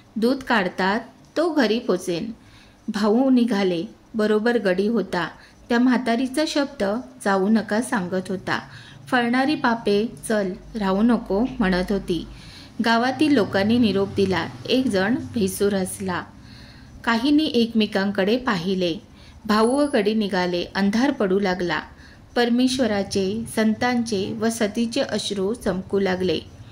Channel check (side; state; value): both; identical; correlation 1.00